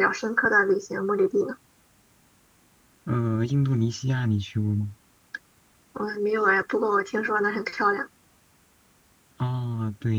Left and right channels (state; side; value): identical; both; correlation 1.00